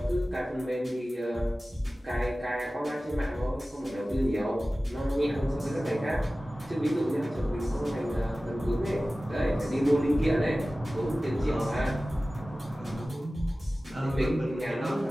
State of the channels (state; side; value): normal; both; correlation 0.96